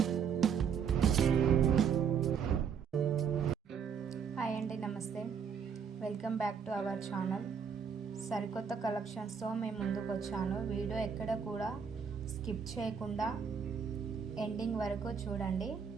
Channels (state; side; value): quieter; left; 6.9 dB